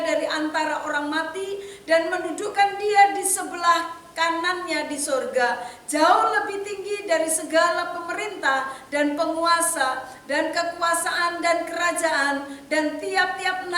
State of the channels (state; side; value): identical; both; correlation 1.00